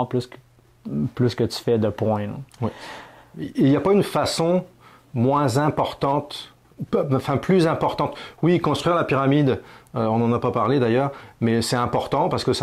plus que tu fais de points. Là. Oui. Il n'y a pas une façon moins importante, plus importante. Oui, construire la pyramide, on n'en a pas parlé d'ailleurs, mais c'est important parce que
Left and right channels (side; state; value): both; identical; correlation 1.00